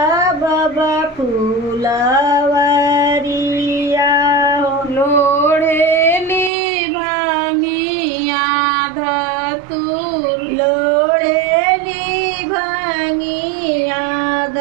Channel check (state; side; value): drops out; left; at 6.5 s